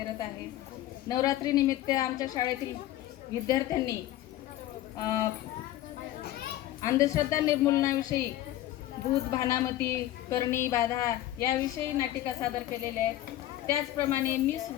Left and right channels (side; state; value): right; quieter; 14.1 dB